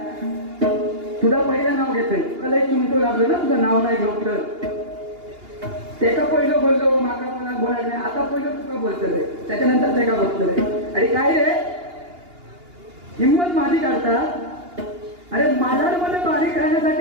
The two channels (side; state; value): left; late; 2.8 ms